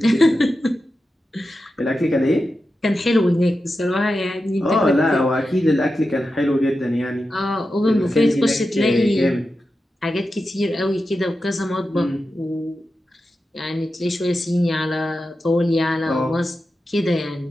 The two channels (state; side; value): normal; both; correlation 0.91